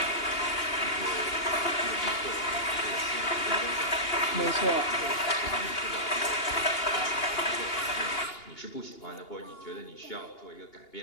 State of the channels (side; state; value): right; late; 2.8 ms